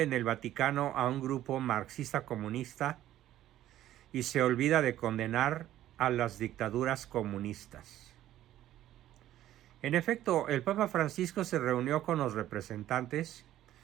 en el Vaticano a un grupo marxista-comunista y se olvida de condenar a las dictaduras comunistas. En efecto, el Papa Francisco se reunió con los representantes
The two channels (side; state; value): left; quieter; 13.1 dB